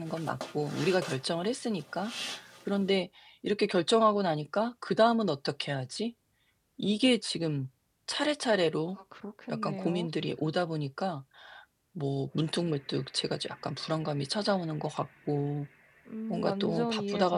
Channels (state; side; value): identical; both; correlation 1.00